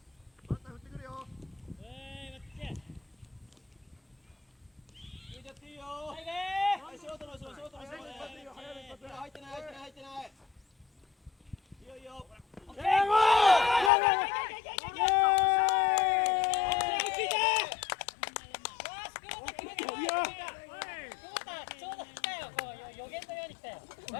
バッター振ってくるよ。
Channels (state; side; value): drops out; right; at 13.9 s